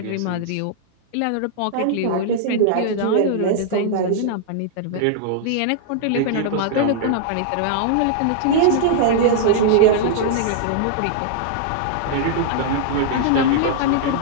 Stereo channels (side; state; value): both; different; correlation -0.01